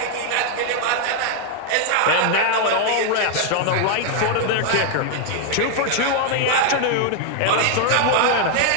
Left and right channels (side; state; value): both; different; correlation 0.00